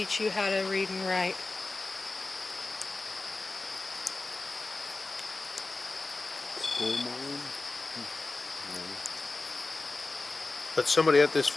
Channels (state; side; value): quieter; right; 3.4 dB